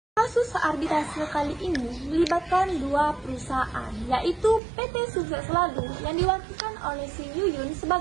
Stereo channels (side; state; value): left; drops out; at 4.6 s